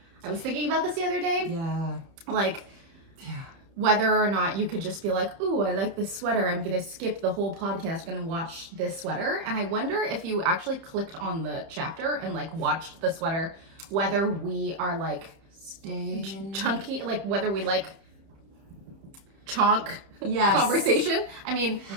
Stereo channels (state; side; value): late; left; 30 ms